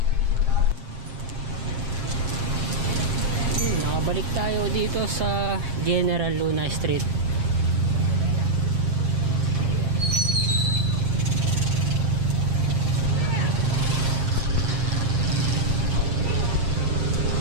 Nakabalik tayo dito sa General Luna Street.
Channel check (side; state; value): left; late; 7.8 ms